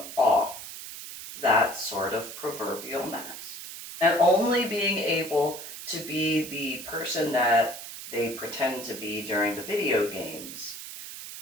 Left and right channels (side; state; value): right; noise; hiss, 11 dB below the sound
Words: off that sort of proverbial mask and only being able to be the person that they pretend to be during the video games